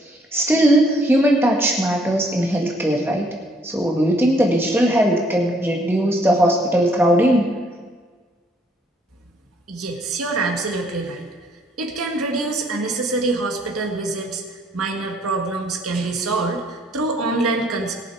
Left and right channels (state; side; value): normal; both; correlation 0.65